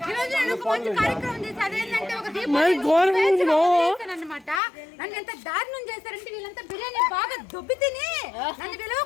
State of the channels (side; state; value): right; drops out; at 4.6 s